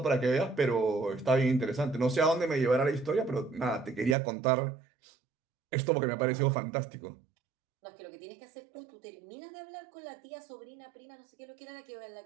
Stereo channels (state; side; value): drops out; left; at 4.2 s